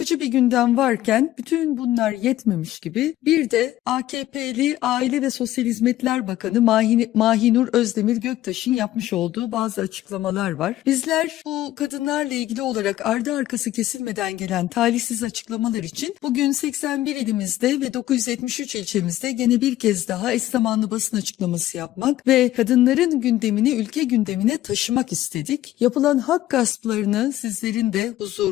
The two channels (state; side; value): quieter; right; 14.3 dB